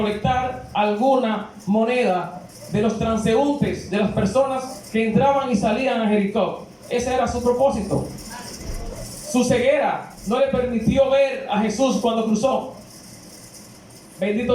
alguna moneda de los transeúntes, de las personas que entraban y salían a Jericó. Ese era su propósito. Su ceguera no le permitió ver a Jesús cuando cruzó.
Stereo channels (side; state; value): both; identical; correlation 1.00